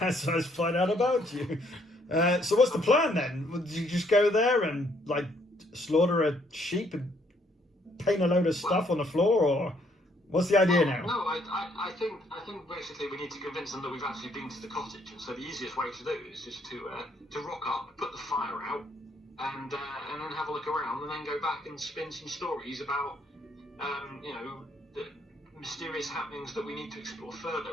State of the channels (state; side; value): normal; both; correlation 0.68